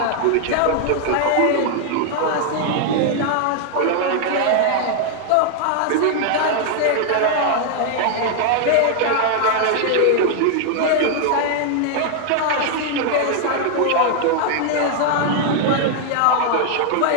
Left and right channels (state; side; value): different; both; correlation 0.00